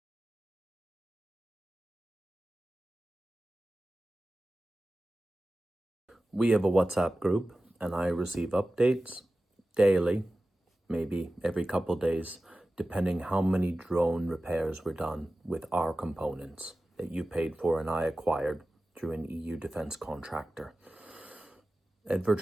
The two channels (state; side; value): normal; both; correlation 0.95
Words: We have a WhatsApp group, and I receive updates daily, maybe every couple days, depending how many drone repairs were done with our components that you paid for and I acquired through an EU defense contractor. At